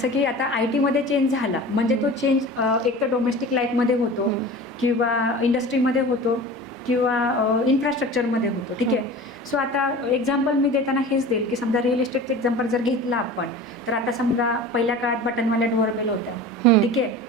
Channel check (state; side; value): normal; both; correlation 0.37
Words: की आता IT मध्ये चेंज झाला म्हणजे तो चेंज एक तर डोमेस्टिक लाईफमध्ये होतो किंवा इंडस्ट्रीमध्ये होतो किंवा इन्फ्रास्ट्रक्चरमध्ये होतो. ठीक आहे. सो आता एक्झाम्पल मी देताना हेच देईल की समजा रिअल इस्टेटचं एक्झाम्पल जर घेतलं आपण, तर आता समजा पहिल्या काळात बटनवाल्या डोअरबेल होत्या. ठीक आहे.